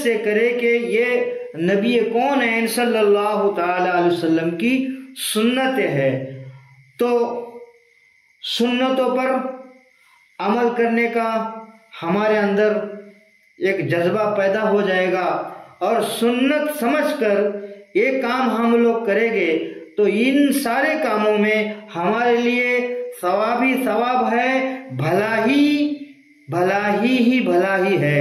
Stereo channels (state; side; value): identical; both; correlation 1.00